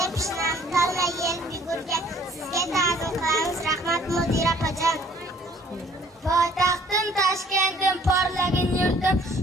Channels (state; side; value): normal; both; correlation 0.58